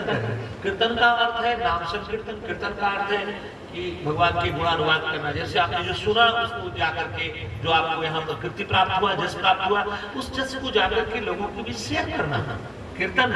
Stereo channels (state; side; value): identical; both; correlation 1.00